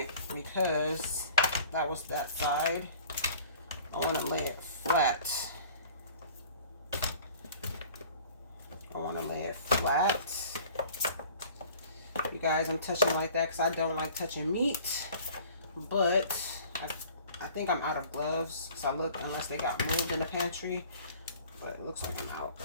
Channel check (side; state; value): both; inverted; correlation -0.48